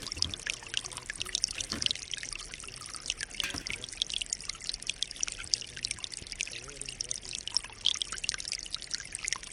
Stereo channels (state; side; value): identical; both; correlation 1.00